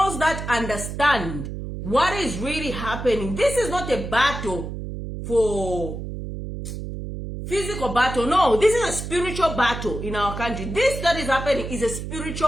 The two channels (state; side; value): noise; right; hum, 7 dB below the sound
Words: that understand what is really happening. This is not a battle for physical battle. No, this is a spiritual battle in our country. This that is happening is a